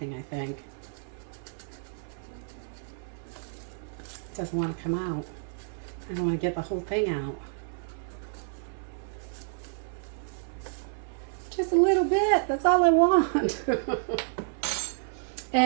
I think. It doesn't want to come out. I don't want to get the whole thing out. Just a little bit. That's all I want.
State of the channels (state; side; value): silent; left; 58 dB below the other